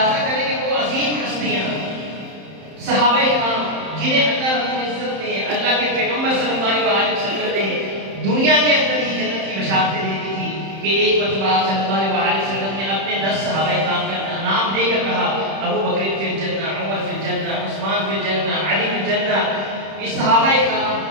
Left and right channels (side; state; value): left; late; 31 ms